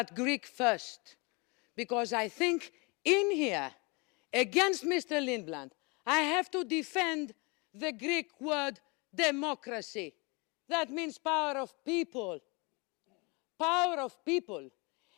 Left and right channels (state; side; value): quieter; right; 29.1 dB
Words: Greek first, because I think in here, against Mr. Lindblad, I have to defend the Greek word democracy. That means power of people. Power of people.